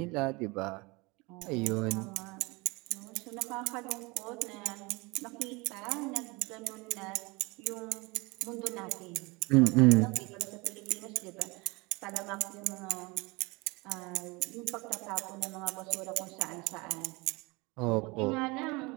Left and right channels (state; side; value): quieter; left; 25.7 dB